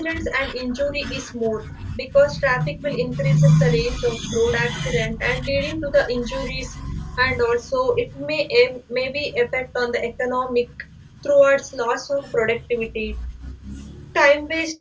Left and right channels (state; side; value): identical; both; correlation 1.00